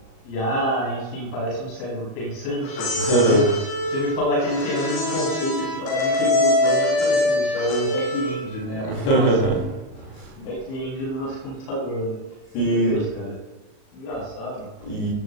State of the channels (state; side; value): late; right; 37 ms